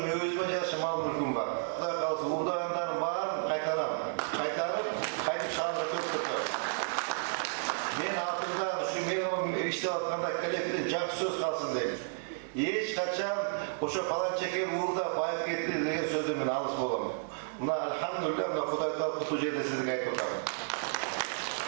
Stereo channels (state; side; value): silent; left; 56 dB below the other